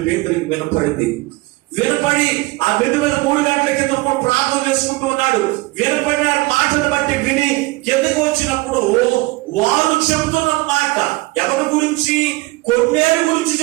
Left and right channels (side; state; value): left; quieter; 22.0 dB